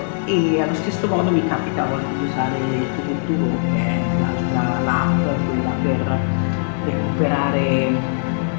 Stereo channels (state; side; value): silent; right; 57 dB below the other